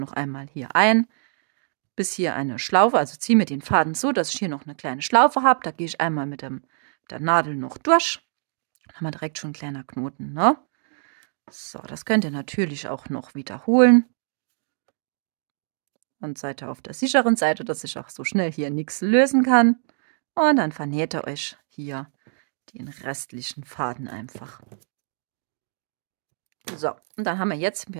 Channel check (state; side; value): silent; left; digital silence